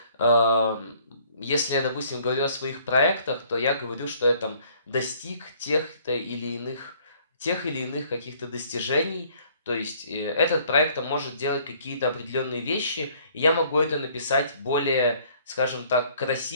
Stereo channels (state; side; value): inverted; both; correlation -0.59